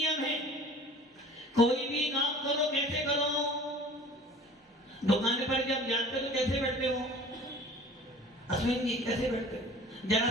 है, कोई भी काम करो कैसे करो? दुकान पर जब जाते हो तो कैसे बैठते हो? अश्विन जी कैसे बैठते हो? जरा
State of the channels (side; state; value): both; normal; correlation 0.46